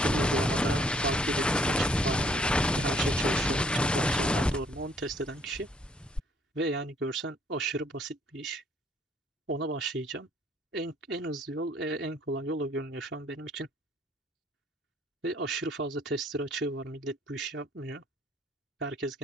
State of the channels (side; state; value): both; normal; correlation 0.62